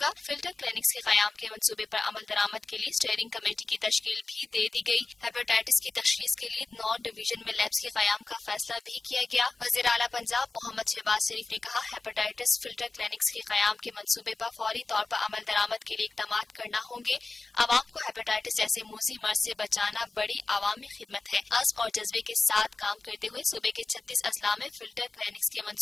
گا۔ فلٹر کلینکس کے قیام کے منصوبے پر عمل درآمد کے لیے اسٹیئرنگ کمیٹی کی تشکیل بھی دے دی گئی۔ ہیپاٹائٹس کی تشخیص کے لیے 9 ڈویژن میں لیبس کے قیام کا فیصلہ بھی کیا گیا۔ وزیر اعلیٰ پنجاب محمد شہباز شریف نے کہا، ہیپاٹائٹس فلٹر کلینکس کے قیام کے منصوبے پر فوری طور پر عمل درآمد کے لیے اقدامات کرنا ہوں گے۔ عوام کو ہیپاٹائٹس جیسے موذی مرض سے بچانا بڑی عوامی خدمت ہے۔ عزم اور جذبے کے ساتھ کام کرتے ہوئے صوبے کے 36 اضلاع میں فلٹر کلینکس کے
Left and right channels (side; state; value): right; quieter; 3.6 dB